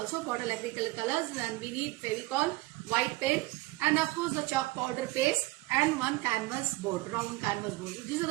bottle acrylic colors. And we need Fevicol, white pen, and of course the chalk powder paste, and one canvas board, round canvas board. These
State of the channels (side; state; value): left; quieter; 20.8 dB